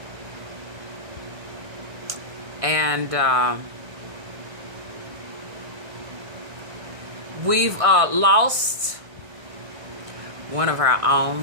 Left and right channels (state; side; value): late; left; 1.6 ms